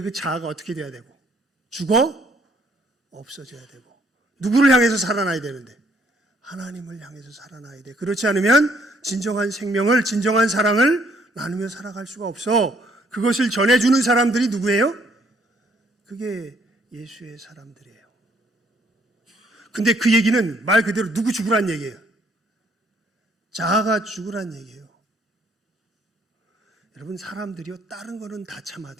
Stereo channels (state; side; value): normal; both; correlation 0.66